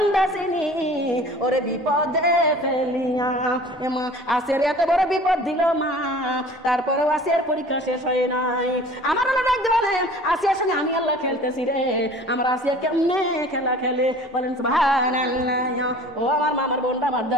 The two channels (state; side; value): normal; both; correlation 0.45